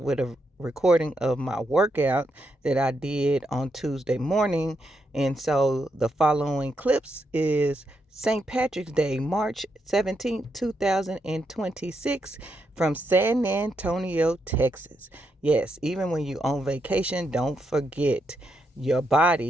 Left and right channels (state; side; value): normal; both; correlation 0.81